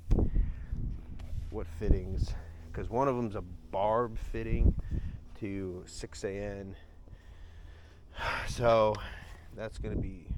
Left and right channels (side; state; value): both; identical; correlation 1.00